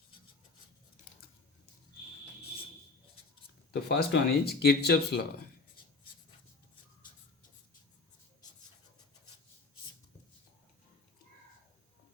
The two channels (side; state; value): right; quieter; 3.9 dB